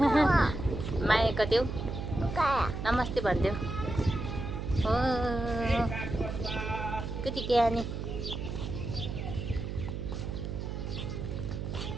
माया गरिदेऊ, नमस्ते भनिदेऊ। हो कति ज्ञानी।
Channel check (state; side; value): noise; right; hum, 5 dB below the sound